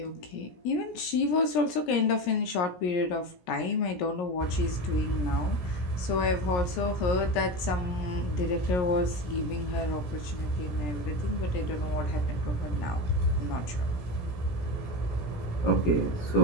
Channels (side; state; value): right; late; 17 ms